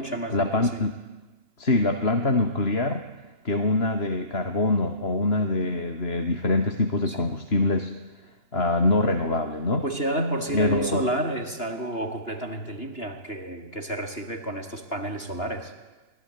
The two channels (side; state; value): right; late; 2.9 ms